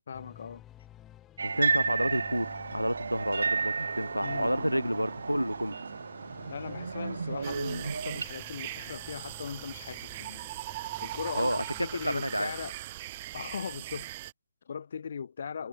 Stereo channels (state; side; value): inverted; both; correlation -0.90